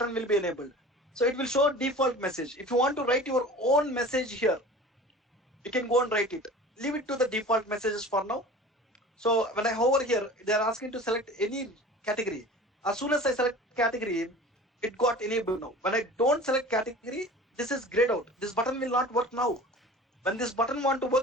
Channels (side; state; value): both; normal; correlation 0.40